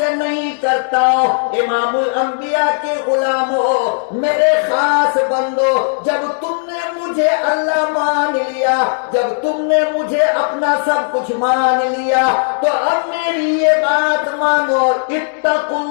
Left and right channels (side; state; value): right; silent; 68 dB below the other